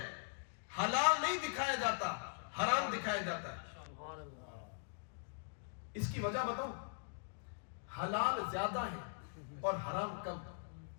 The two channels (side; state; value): right; silent; digital silence